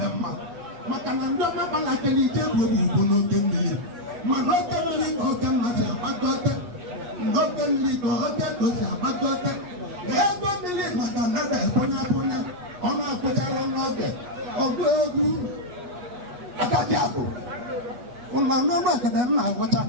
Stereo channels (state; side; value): late; left; 8.3 ms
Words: mma maka na ndị ọmagbalakere ije bụ ugbo n'oge mmiri mana oke mmiri ka oke nna si agbagote n'oke mmiri ka oke ndo si agbagote ego mmiri maka na na-ebunye abụnye ọ na-akwụchara n'oge ọgụ egwu agaghị abụ ụlọ n'ụlọ ekede nna agwụcha